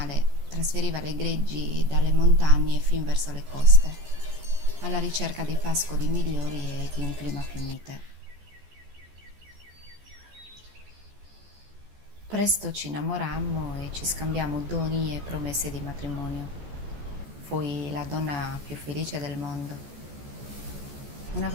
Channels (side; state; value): left; late; 14 ms